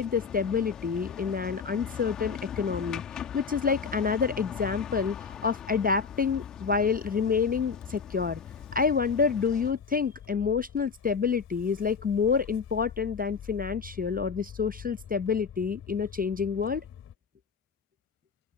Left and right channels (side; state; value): right; quieter; 5.6 dB